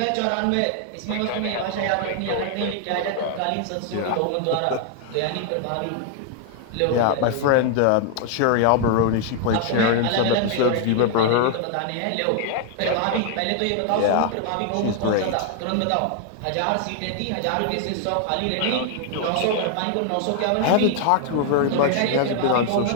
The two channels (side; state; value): both; different; correlation 0.00